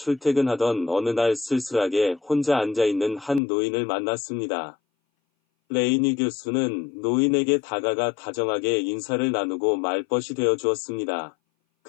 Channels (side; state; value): right; drops out; at 3.4 s